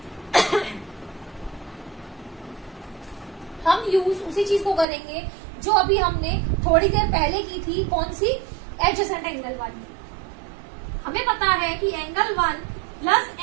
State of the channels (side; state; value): left; drops out; at 4.9 s